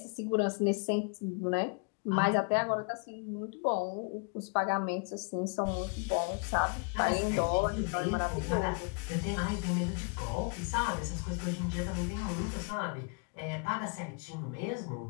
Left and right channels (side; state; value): right; quieter; 36.4 dB